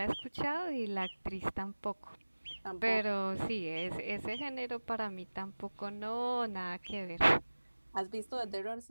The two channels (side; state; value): both; inverted; correlation -1.00